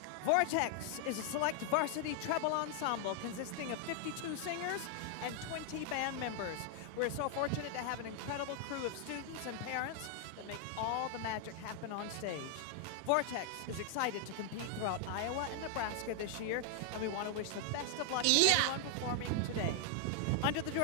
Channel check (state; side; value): different; both; correlation 0.00